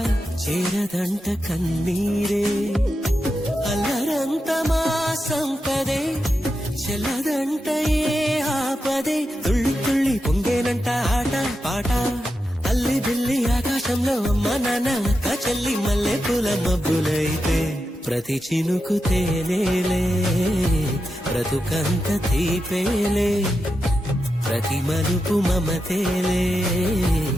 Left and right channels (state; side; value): normal; both; correlation 0.88